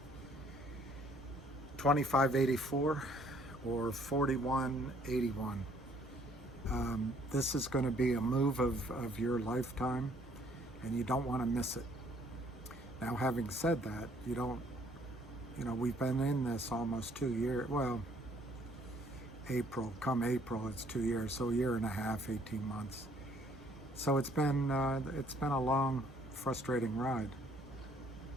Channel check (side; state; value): both; normal; correlation 0.62